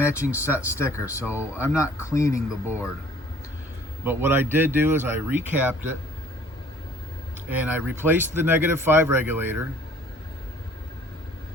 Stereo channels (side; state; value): both; normal; correlation 0.55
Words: set sticker, so I'm not cleaning the board. But what I did do is I recapped it, and I replaced the -5 regulator,